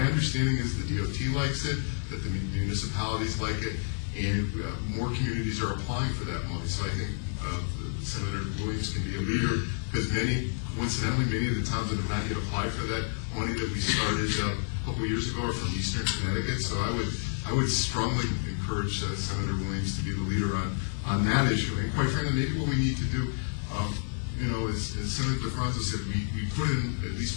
understanding is the DOT likes it, that the municipalities like it, and more communities are applying for that money. So I think Senator Williams can be a leader, because coincidentally, many of the towns that have not yet applied for that money that we started a couple of years ago are from Eastern Connecticut. So I would strongly encourage Senator Williams to be the leader on that issue. And quite frankly, maybe what we need to do, you know, as Senator DeFranco said, we put in at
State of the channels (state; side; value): silent; right; 58 dB below the other